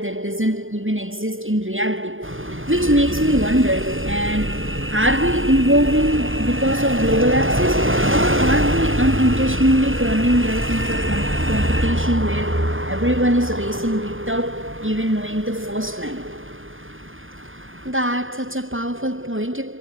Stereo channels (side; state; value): left; late; 0.59 ms